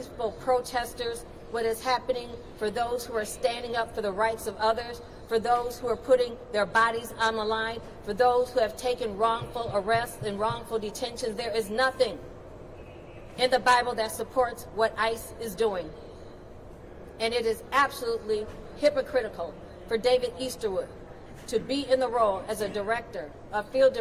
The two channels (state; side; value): identical; both; correlation 1.00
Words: protesters, what is happening for those who are standing up for the rights of others, for those who are putting their bodies on the line, for those who have taken wrongful arrests and wrongful detentions. There is nothing in the Bible that supports what ICE is doing. And it is absolutely hypocritical for David Easterwood to be in the role as a director, a field